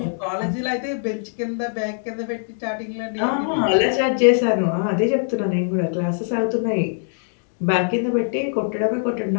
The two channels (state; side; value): silent; right; digital silence